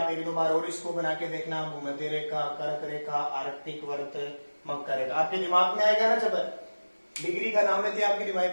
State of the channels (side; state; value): both; inverted; correlation -1.00